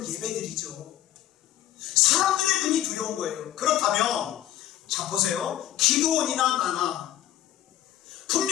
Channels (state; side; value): quieter; right; 12.8 dB